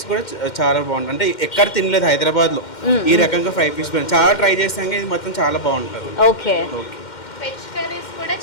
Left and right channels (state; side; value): late; right; 2.1 ms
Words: కూడా చాలా బాగుంటుంది. అంటే ఎక్కడ తినలేదు హైదరాబాద్లో ఈ రకంగా 5 పీస్ బిర్యానీ, చాలా ట్రై చేసాక ఇది మొత్తం చాలా బాగుంటుంది. ఓకే. వెజ్ కర్రీస్ కూడా